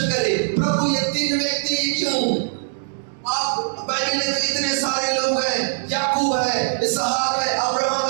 करे, प्रभु ये 3 व्यक्ति क्यों? आप बाइबल में तो इतने सारे लोग हैं, याकूब है, इसहाक है, अब्राहम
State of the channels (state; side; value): silent; left; digital silence